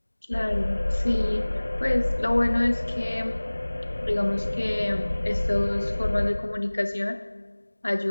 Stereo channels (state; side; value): inverted; both; correlation -1.00